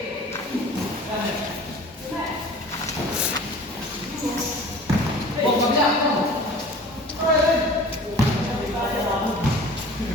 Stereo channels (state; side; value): normal; both; correlation 0.43